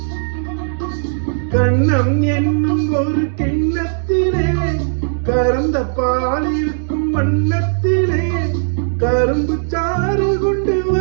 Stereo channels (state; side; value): silent; left; digital silence